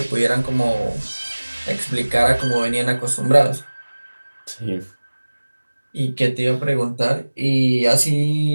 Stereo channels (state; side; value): inverted; both; correlation -1.00